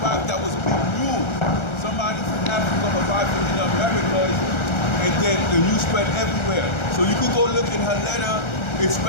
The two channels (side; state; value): right; late; 1.3 ms